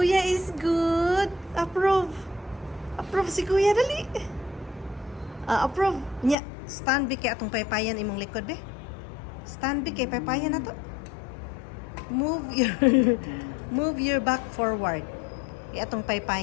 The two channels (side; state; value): right; drops out; at 6.4 s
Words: is good. Approve. Approve si Kuya, dali. Approve. Nya, stand be kay atong paypayan imong likod be. Stand be kay paypayan na to. Move your move your back forward. Kay atong